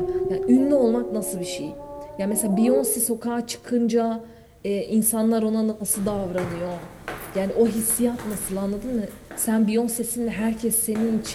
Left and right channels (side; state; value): both; identical; correlation 1.00